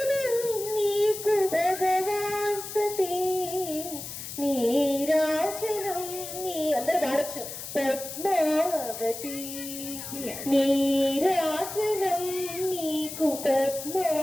నీకు భగవాన్ సతీ నీరాజనం నీ అందరూ పాడచ్చు పద్మావతి నీరాజనం నీకు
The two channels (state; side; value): noise; left; hiss, 9 dB below the sound